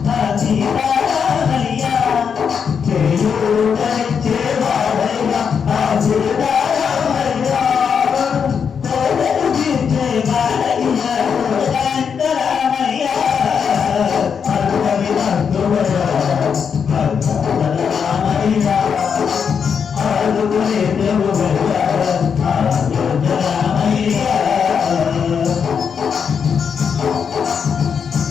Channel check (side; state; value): right; quieter; 6.7 dB